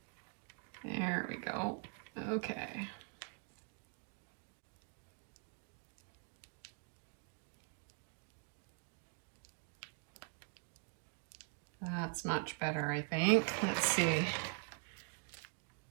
There we go. Okay. That's much better, I think. Let's see.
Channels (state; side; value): quieter; left; 36.7 dB